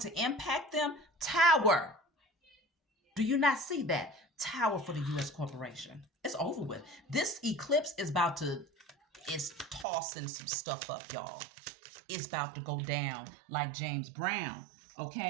impact them? Tower. Do you not see that? Tower for the U.S. corporation. It's over with. This eclipse is it's tossing some stuff up, y'all. It's about to go down like James Brown,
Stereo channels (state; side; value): drops out; left; at 9.9 s